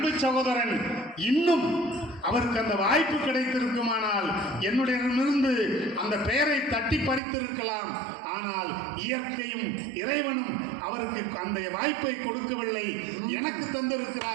சகோதரன் இன்னும் அவருக்கு அந்த வாய்ப்பு கிடைத்திருக்குமானால் என்னுடையிடமிருந்து அந்த பெயரை தட்டி பறித்திருக்கலாம். ஆனால் இயற்கையும் இறைவனும் அவருக்கு அந்த வாய்ப்பை கொடுக்கவில்லை. எனக்கு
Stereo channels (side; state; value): left; drops out; at 7.2 s